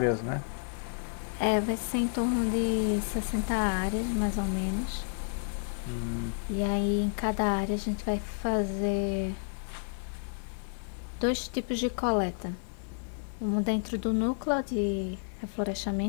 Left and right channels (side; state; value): right; silent; digital silence